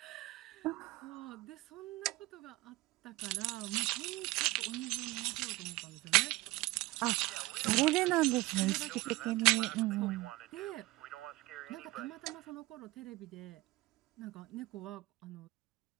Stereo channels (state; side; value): quieter; left; 20.5 dB